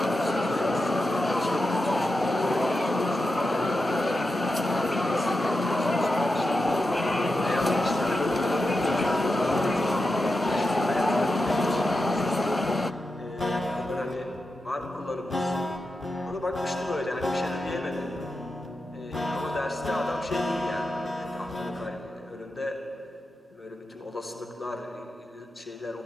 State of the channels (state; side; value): normal; both; correlation 0.89